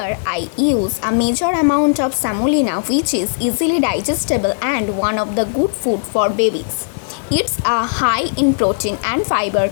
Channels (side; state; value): right; silent; 57 dB below the other